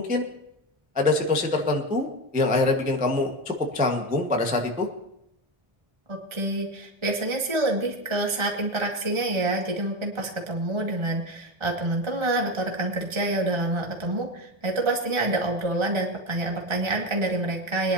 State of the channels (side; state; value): left; late; 1.4 ms